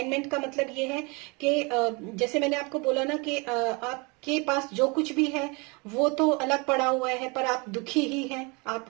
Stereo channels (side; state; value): left; quieter; 29.4 dB